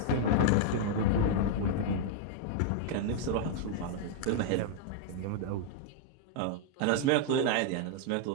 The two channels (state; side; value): different; both; correlation -0.01